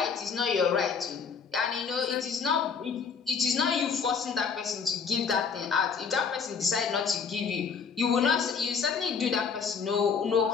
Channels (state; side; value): quieter; right; 6.0 dB